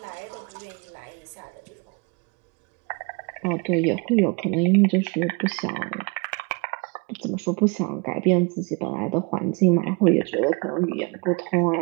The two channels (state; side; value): quieter; left; 30.0 dB